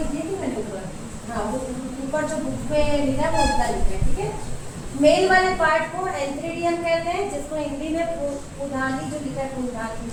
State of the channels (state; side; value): identical; both; correlation 1.00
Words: दिया कि मैंने ऊपर, हाँ वो ऊपर जो बुक में लिखा है वो उल्टा लिखा है। ठीक है, मेल वाले पार्ट को एंथ्रीडियम कहते हैं, जिसको हिंदी में पुधानी जो लिखा है पुधानी